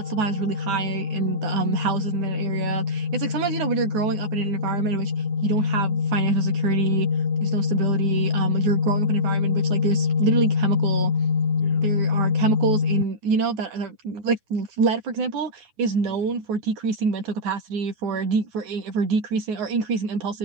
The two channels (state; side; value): late; left; 9.5 ms